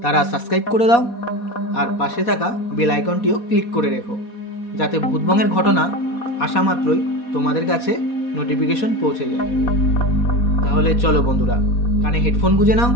তারা সাবস্ক্রাইব করে দাও আর পাশে থাকা বেল আইকনটিও ক্লিক করে রেখো, যাতে ভূতবংয়ের ঘটনা আসা মাত্রই তোমাদের কাছে নোটিফিকেশন পৌঁছে যায়। তাহলে চলো বন্ধুরা, কানে হেডফোন গুঁজে নাও,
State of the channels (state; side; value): late; right; 4.2 ms